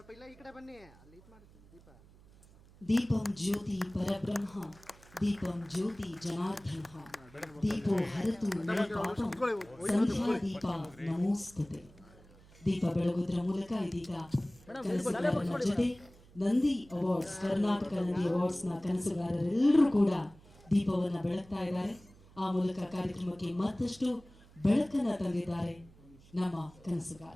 ಇಲ್ಲ ಈ ಕಡೆ ಬನ್ನಿ. ಅಲ್ಲಿ ಇದು ಮಾಡ್ತೀನಿ ದೀಪ. ದೀಪಂ ಜ್ಯೋತಿ ಪರಬ್ರಹ್ಮ ದೀಪಂ ಜ್ಯೋತಿ ಜನಾರ್ದನ ದೀಪೋ ಹರತು ಮೇ ಪಾಪಂ ಸಂಧ್ಯಾ ದೀಪ ನಮೋಸ್ತುತೆ. ದೀಪ ಬೆಳಗುವುದರ ಮೂಲಕ ಇದೀಗ ಕನಸುಗಾರನ ಜೊತೆ ನಂದಿ ಅವಾರ್ಡ್ಸ್, ಕರ್ನಾಟಕ ನಂದಿ ಅವಾರ್ಡ್ಸ್ನ ಕನಸುಗಾರರೆಲ್ಲರೂ ಕೂಡ ದೀಪವನ್ನು ಬೆಳಗ್ತಾ ಇದ್ದಾರೆ. ಆ ಮೂಲಕ ಕಾರ್ಯಕ್ರಮಕ್ಕೆ ಮತ್ತಷ್ಟು ಬೆಳಕನ್ನು ತಂದಿದ್ದಾರೆ ನಮ್ಮ ಕನಸುಗಾರ.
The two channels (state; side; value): noise; right; hum, 24 dB below the sound